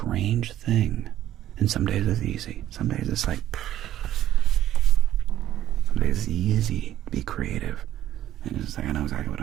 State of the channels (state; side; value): quieter; left; 12.4 dB